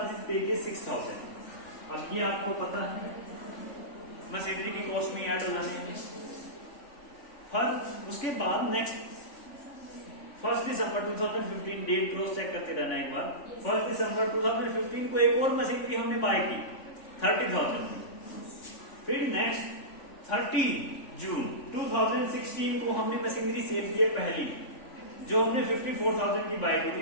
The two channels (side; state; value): right; late; 3.5 ms